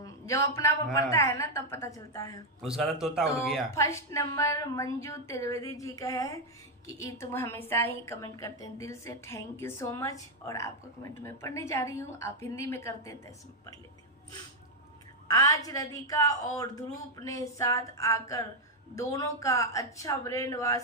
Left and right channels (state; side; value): normal; both; correlation 0.01